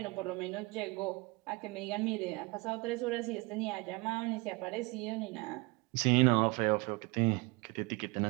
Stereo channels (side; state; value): left; quieter; 26.7 dB